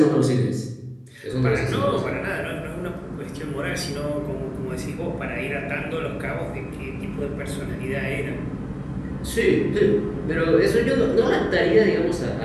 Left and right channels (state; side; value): identical; both; correlation 1.00